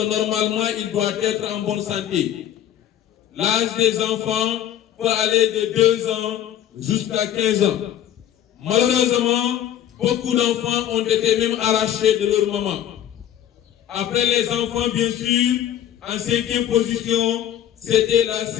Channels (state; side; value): quieter; right; 11.1 dB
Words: normalement il doit être en bonne santé. L'âge des enfants peut aller de 2 ans jusqu'à 15 ans. Malheureusement, beaucoup d'enfants ont été même arrachés de leur maman. Après les enfants, bien sûr, en 5e position, c'était la